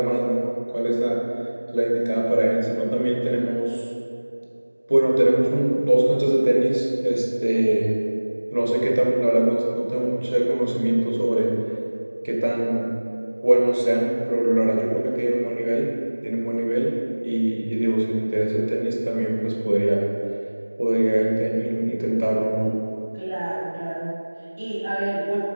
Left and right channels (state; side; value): inverted; both; correlation -1.00